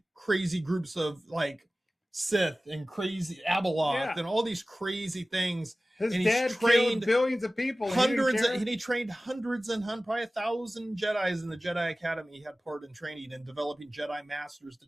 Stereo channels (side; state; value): both; normal; correlation 0.97